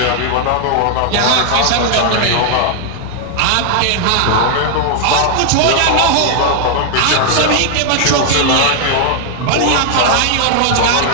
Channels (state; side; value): different; both; correlation 0.00